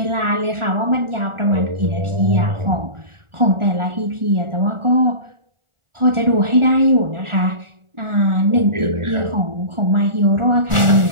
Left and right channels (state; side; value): late; left; 1.4 ms